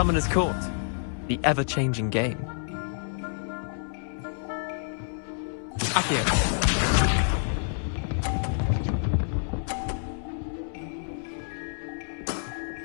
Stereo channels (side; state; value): right; silent; 59 dB below the other